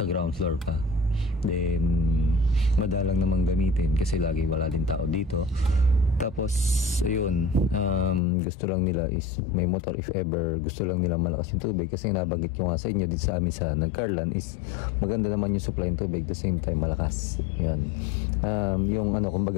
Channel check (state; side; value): drops out; right; at 8.2 s